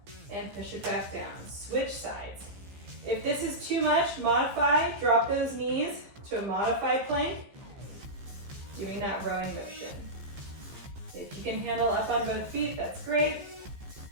and push it back down. Switch sides. If this is too much, modify, drop those knees to a modified plank, doing that rowing motion. If you can handle up on both feet, that's great.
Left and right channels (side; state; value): left; late; 15 ms